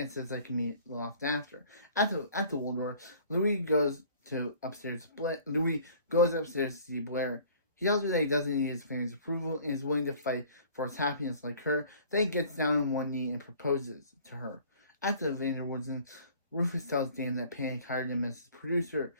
says they can meet loft after. At the Waldorf, Louis goes upstairs to see Blair. He tells her that he doesn't need his family's approval and is willing to fight for his happiness like her. Then he gets down on one knee and proposes to her. At the Vanderwoodsen, Rufus tells Dan that Panic hired him as his producer.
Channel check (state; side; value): inverted; both; correlation -0.51